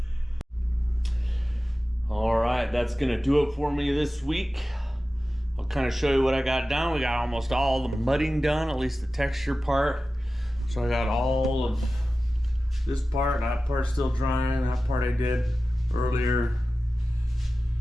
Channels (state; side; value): normal; both; correlation 0.95